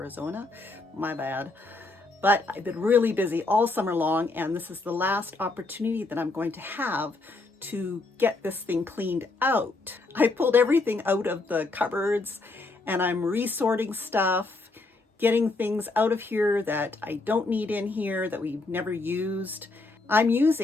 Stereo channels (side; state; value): right; quieter; 3.3 dB